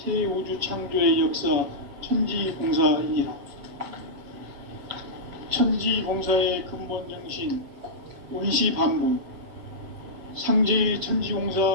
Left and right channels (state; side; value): late; left; 7.5 ms